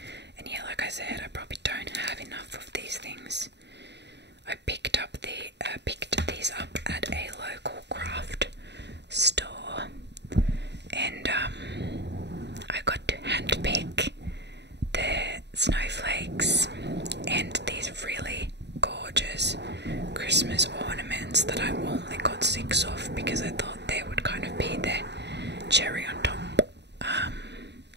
yeah, like I said, I probably don't have enough of these things. I picked these up at a local craft store, and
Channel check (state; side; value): late; left; 0.50 ms